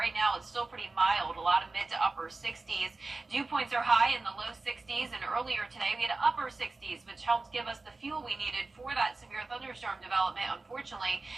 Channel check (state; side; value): quieter; left; 3.5 dB